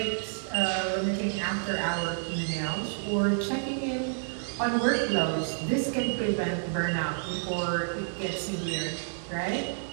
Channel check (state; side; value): silent; left; 58 dB below the other